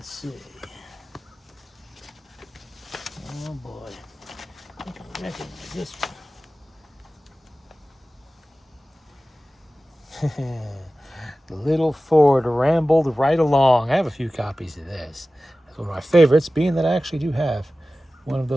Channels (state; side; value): normal; both; correlation 0.96